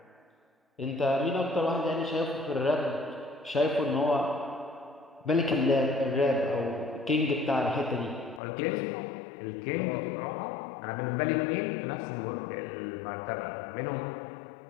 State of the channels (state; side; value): drops out; right; at 8.4 s